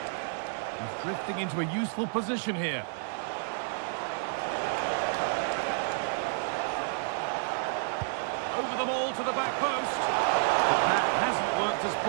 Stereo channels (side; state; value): left; silent; digital silence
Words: He's drifting into a useful position here. Over the ball to the back post. But that hasn't worked as